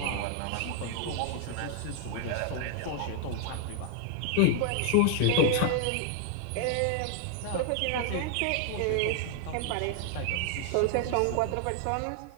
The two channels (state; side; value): different; both; correlation 0.00